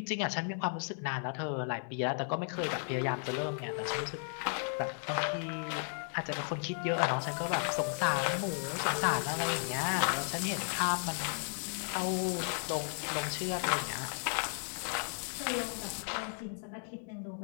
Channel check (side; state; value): right; silent; 55 dB below the other